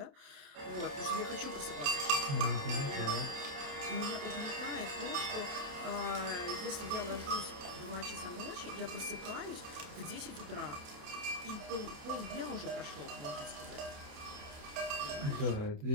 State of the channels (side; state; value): left; late; 28 ms